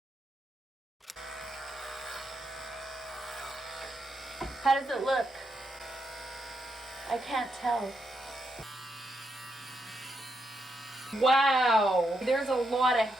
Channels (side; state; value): both; normal; correlation 0.81